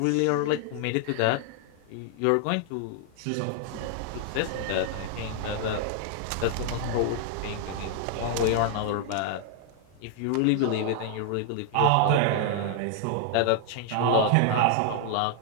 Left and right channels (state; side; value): different; both; correlation 0.00